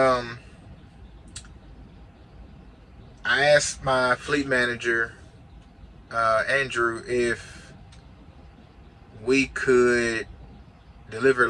asked my fleet manager, Andrew, if we could deliver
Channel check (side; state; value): both; identical; correlation 1.00